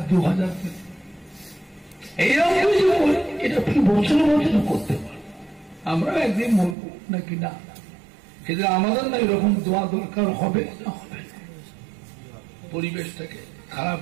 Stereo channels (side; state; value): left; drops out; at 6.8 s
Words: 2,000 দিলেন এইরকম কিছু করে এটা বছর বছর করতে পারে আমরা একদিন বলবো নাকি না কিন্তু আমাদের না এরকম দোয়া দরকার হবে না হবে না পরিবেশটাকে খারাপ